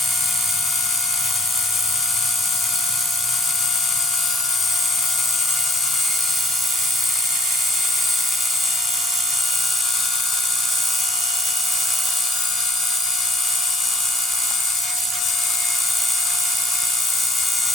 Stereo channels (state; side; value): normal; both; correlation 0.56